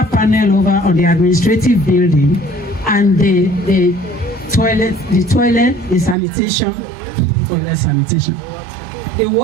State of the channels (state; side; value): drops out; left; at 6.2 s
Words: panel over on the administrative building and the sanitation, the